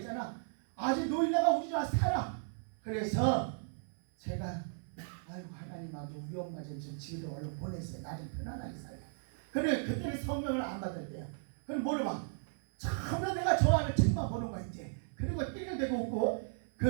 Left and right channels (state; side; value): silent; left; 54 dB below the other